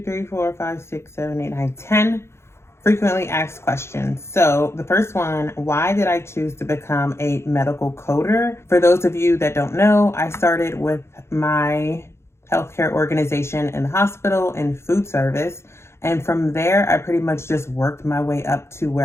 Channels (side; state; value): right; late; 0.13 ms